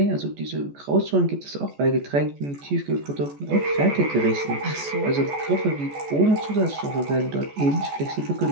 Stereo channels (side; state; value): left; late; 14 ms